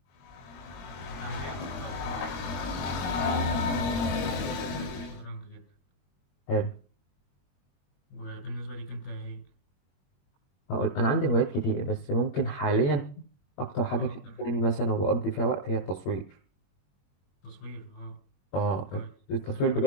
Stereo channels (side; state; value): right; late; 21 ms